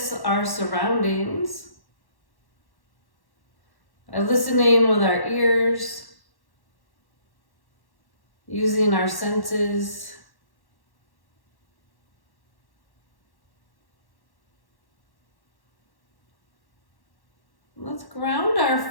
our surroundings by listening with our ears, using our senses. Let's ground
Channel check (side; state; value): right; late; 1.1 ms